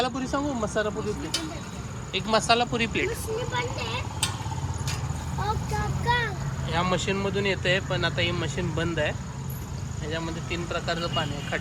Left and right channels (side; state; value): both; identical; correlation 1.00